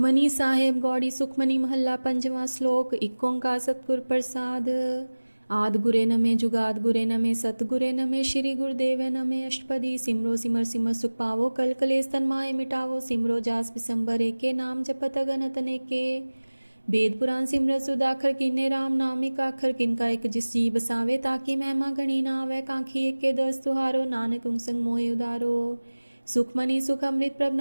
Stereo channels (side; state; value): both; inverted; correlation -1.00